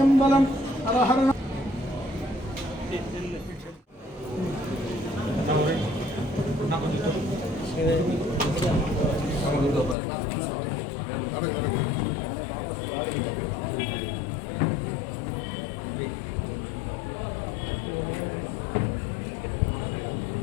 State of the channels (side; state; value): right; drops out; at 10.0 s